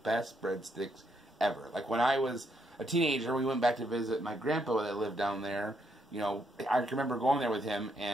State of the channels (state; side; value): normal; both; correlation 0.75